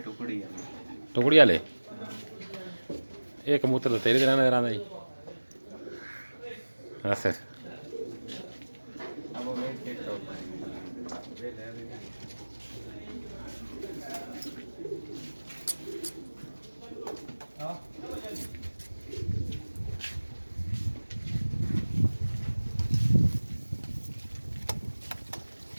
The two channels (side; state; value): both; inverted; correlation -1.00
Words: ਵਾਲੇ ਇਹ ਕਬੂਤਰ ਤਾਂ ਤੇਰੇ ਤਰ੍ਹਾਂ ਨਜ਼ਰ ਆਉਂਦਾ ਜੀ ਅੱਛਾ अब वो वेट चेक करो वेट है हाँ